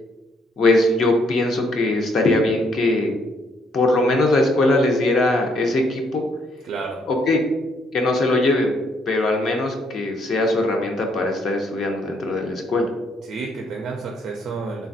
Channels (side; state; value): both; normal; correlation 0.70